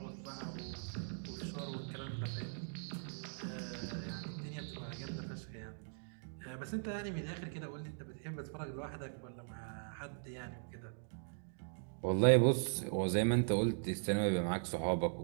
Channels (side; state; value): left; silent; digital silence